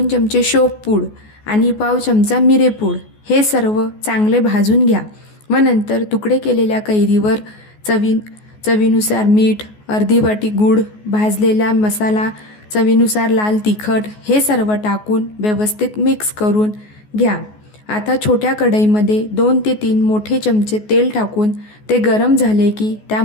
चमचे शोपपूड आणि पाव चमचा मिरेपूड हे सर्व चांगले भाजून घ्या व नंतर तुकडे केलेल्या कैरीवर चवीनुसार मीठ, अर्धी वाटी गूळ, भाजलेला मसाला, चवीनुसार लाल तिखट हे सर्व टाकून व्यवस्थित मिक्स करून घ्या। आता छोट्या कढईमध्ये 2 ते 3 मोठे चमचे तेल टाकून ते गरम झाले की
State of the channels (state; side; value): late; right; 14 ms